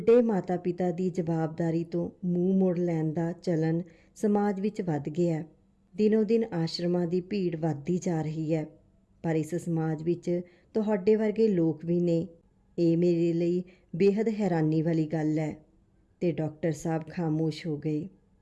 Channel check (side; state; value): both; identical; correlation 1.00